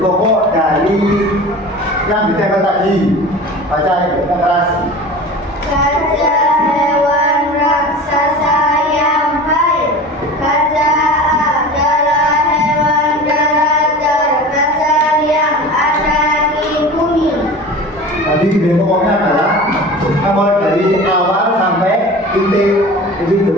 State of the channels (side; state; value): both; normal; correlation 0.36